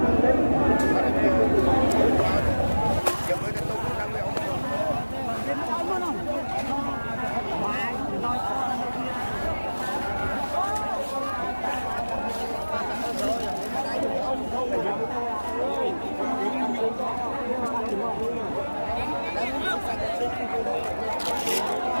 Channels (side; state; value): both; inverted; correlation -1.00